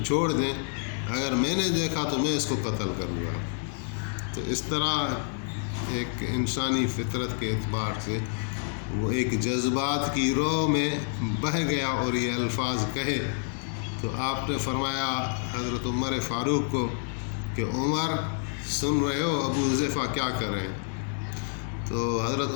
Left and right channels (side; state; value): right; silent; 59 dB below the other